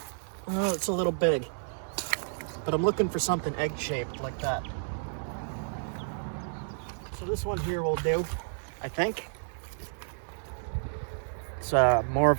Oh, it's a little big. But I'm looking for something egg-shaped like that. So this one here will do, I think. It's more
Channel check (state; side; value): silent; left; digital silence